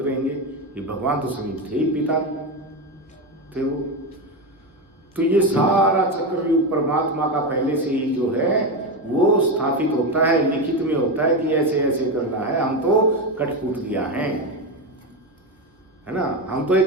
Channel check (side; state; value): both; normal; correlation 0.14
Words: रहेंगे। ये भगवान तो समीप थे ही, पिता थे वो। तो ये सारा चक्रव्यूह परमात्मा का पहले से ही जो है वो स्थापित होता है, लिखित में होता है कि ऐसे ऐसे करना है। हम तो कठपुतलियां हैं, है ना, हम तो